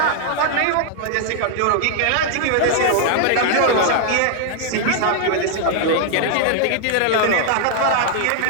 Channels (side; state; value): both; different; correlation 0.00